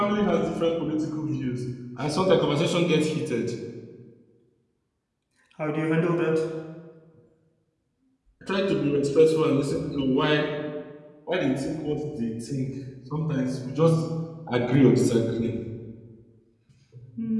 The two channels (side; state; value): both; identical; correlation 1.00